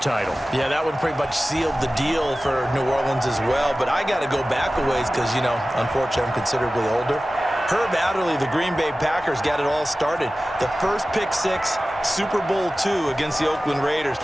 title. Yeah, that one pretty much sealed the deal for New Orleans as well. But I got to go back a ways because, you know, unfortunately I'm considerably older. Herb Adderley, the Green Bay Packers, got it all started. The first pick six, Super Bowl II against the Oakland Raiders,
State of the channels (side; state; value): both; normal; correlation 0.96